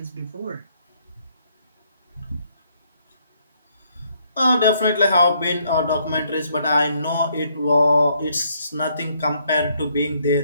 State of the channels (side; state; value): both; inverted; correlation -0.70